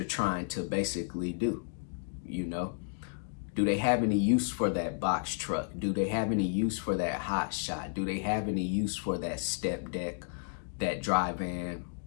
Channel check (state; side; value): silent; right; digital silence